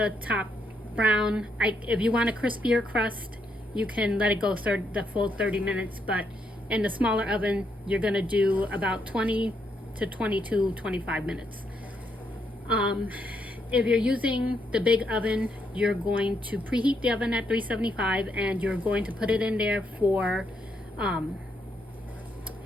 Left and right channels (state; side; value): normal; both; correlation 0.77